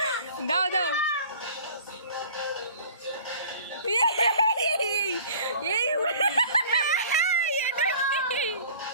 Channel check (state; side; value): inverted; both; correlation -0.47